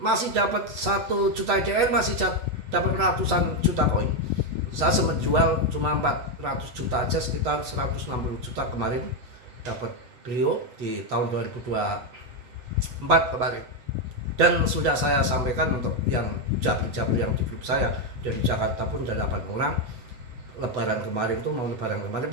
dapat 1 juta IDR, masih dapat ratusan juta koin. Saya sempat jual cuma 400 juta aja, sekitar 160 juta kemarin dapat beliau di tahun 2024 kemarin. Dan sudah saya sampaikan untuk yang jabri yang di grup saya dari Jakarta pun ada 8 orang. Lebaran kemarin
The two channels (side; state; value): left; late; 8.1 ms